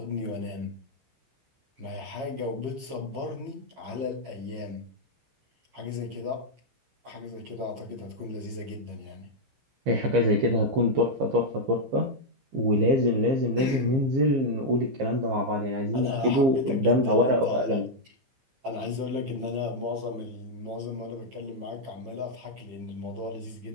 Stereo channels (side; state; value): left; late; 15 ms